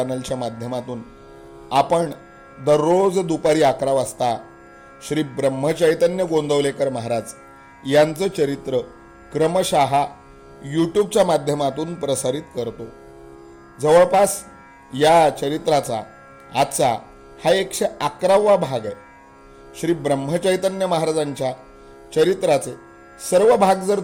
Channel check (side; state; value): both; identical; correlation 1.00